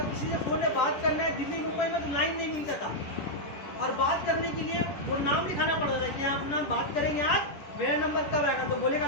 किसी से फोन में बात करना है दिल्ली मुंबई में तो लाइन नहीं मिलता था, और बात करने के लिए वो नाम लिखाना पड़ता था कि आप अपना बात करेंगे, आज मेरा नंबर कब आएगा, तो बोलेगा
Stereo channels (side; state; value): right; late; 10 ms